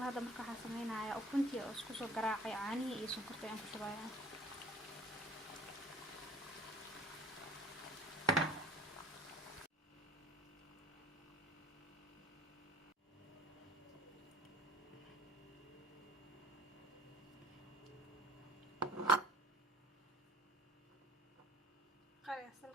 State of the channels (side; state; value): both; normal; correlation 0.46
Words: hadda marka waxaan sameynayaa ukuntii oo isku soo garaacay caanihi iyo sonkorta aan ku shubayaa. qari